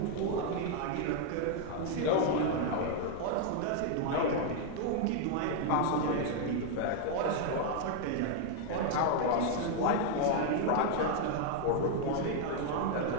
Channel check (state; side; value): different; both; correlation 0.00